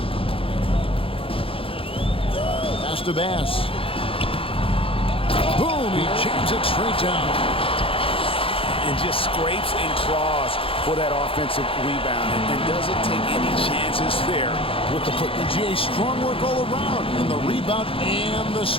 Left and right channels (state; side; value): late; right; 0.27 ms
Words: Pass to Bass. Boom! He jams it straight down. And just scrapes and claws for that offensive rebound and doesn't take any chances there with the foot. GA, strong work all around in the rebound and the